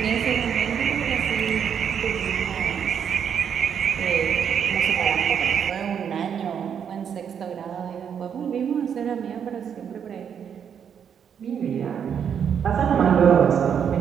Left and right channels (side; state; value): left; quieter; 7.9 dB